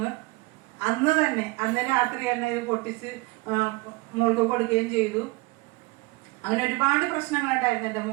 അന്ന് രാത്രി തന്നെ ഇത് പൊട്ടിച്ച് മോൾക്ക് കൊടുക്കുകയും ചെയ്തു. അങ്ങനെ ഒരുപാട് പ്രശ്നങ്ങളുണ്ടായിരുന്നു എൻ്റെ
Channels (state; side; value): quieter; left; 23.6 dB